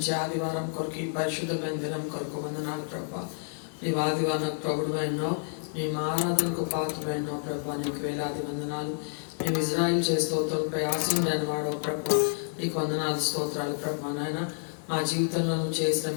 ఆదివారం కొరకు, ఈ పరిశుద్ధమైన దినం కొరకు వందనాలు ప్రభా. నీవు ఆదివారం ప్రభుడువైనావు, నీ ఆరాధనకు పాత్రమైనావు ప్రభా. నీకు వేలాది వందనాలు. మేము ఇజ్రాయిల్ చే స్తోత్రంపై ఆశీనుడైన వాడు ప్రభా. నీకు వందనాలు స్తోత్రాలు ప్రభా. నాయన మా జీవితంలో చేసిన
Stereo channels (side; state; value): right; silent; 58 dB below the other